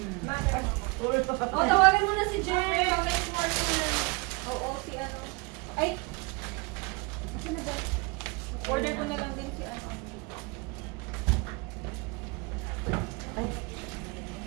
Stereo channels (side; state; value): left; quieter; 28.7 dB